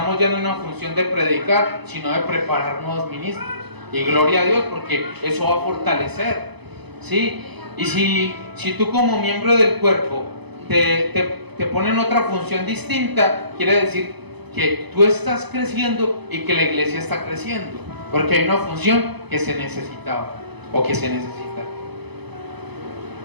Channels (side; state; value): left; late; 0.99 ms